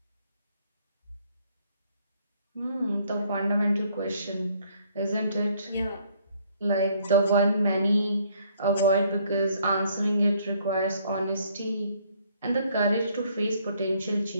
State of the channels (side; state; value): both; inverted; correlation -0.64